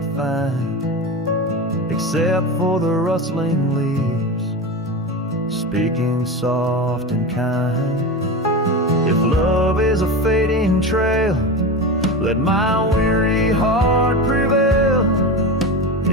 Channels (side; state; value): both; normal; correlation 0.23